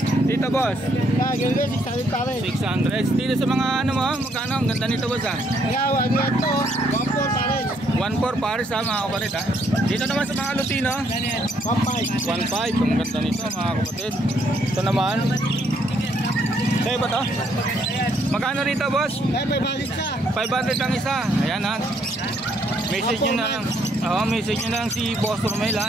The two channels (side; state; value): both; normal; correlation 0.70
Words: Dito boss? 600 pares. 600. Dito sa mga ano mo, magkano? Ang ganda nito boss ah. Ayaw, ano yan to? 1.4 pares. 1.4 pares ha mga kapatid ha. Dito naman sa mga Lutino 1.5. 1.5. Ang ganda nito mga kapatid. Ito naman sa'yo ba to? Magkano rito boss? 500 isa. 500 ang isa. Ayan ha. Message nyo na lang. Message nyo na lang si Boss Romel